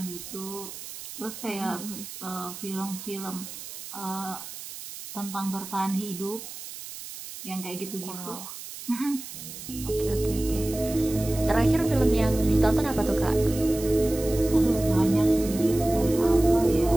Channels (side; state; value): right; noise; hiss, 12 dB below the sound